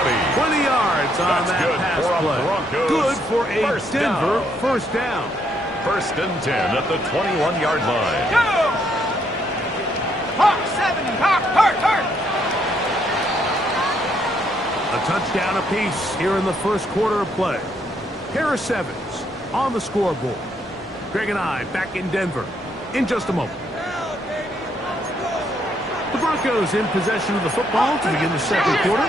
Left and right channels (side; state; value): both; normal; correlation 0.73